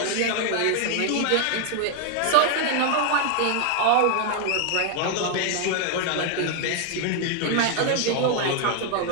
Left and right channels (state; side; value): different; both; correlation 0.00